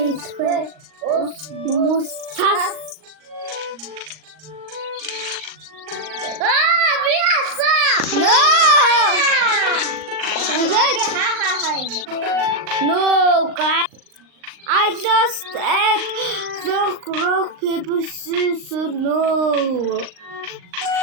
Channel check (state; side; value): late; left; 39 ms